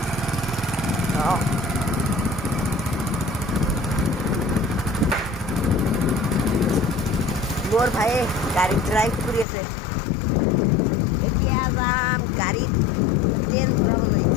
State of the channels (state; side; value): drops out; right; at 9.5 s